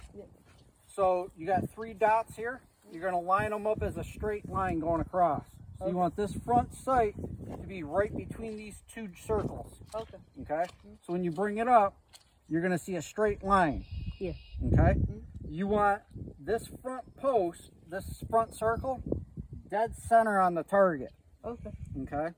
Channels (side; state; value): both; identical; correlation 1.00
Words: Yep. So you got 3 dots here. You're going to line them up as a straight line going across. So you want this front sight to be right between these 2 circles. Okay. Okay? So when you bring it up, you're going to see a straight line. Yeah. Okay? You want this front post, this front circle, dead center on the target. Okay. Okay?